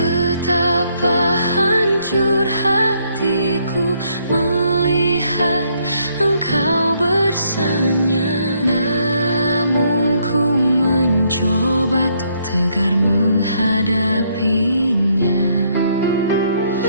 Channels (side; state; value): both; inverted; correlation -0.71